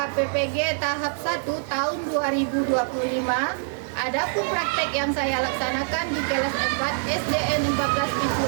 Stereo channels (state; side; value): silent; left; 62 dB below the other